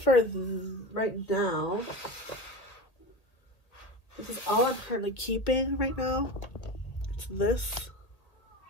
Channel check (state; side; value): late; right; 1.7 ms